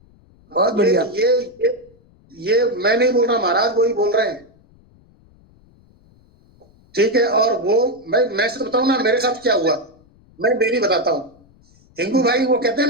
बहुत ये बढ़िया। ये मैं नहीं बोल रहा महाराज, वही बोल रहे हैं। ठीक है, और वो मैं सिर्फ बताऊं ना मेरे साथ क्या हुआ, मैं डेली बताता हूँ। हिंगू भाई वो कहते हैं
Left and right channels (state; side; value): noise; left; rumble, 30 dB below the sound